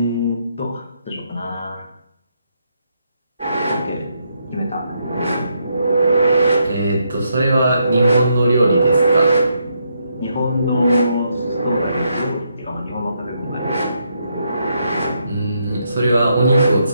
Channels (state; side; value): inverted; both; correlation -0.78